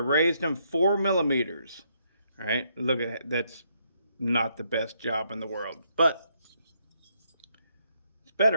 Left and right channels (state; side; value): inverted; both; correlation -0.74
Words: them 4 millimeters. All right, look at that. That's not the best job in the world, but it's